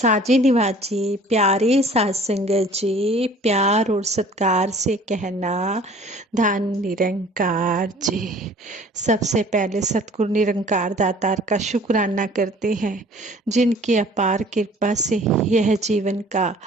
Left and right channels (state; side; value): normal; both; correlation 0.51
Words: निवाजी प्यारे साध संगत जी, प्यार और सत्कार से कहना धन निरंकार जी। सबसे पहले सतगुरु निरंकार दातार का शुक्राना करते हैं, जिनकी अपार कृपा से यह जीवन का